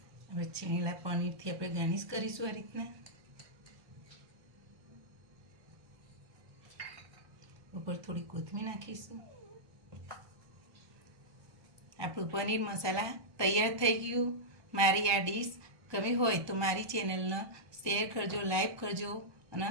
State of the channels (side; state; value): left; late; 1.2 ms